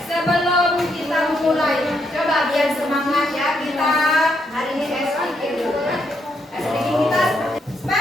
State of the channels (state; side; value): normal; both; correlation 0.77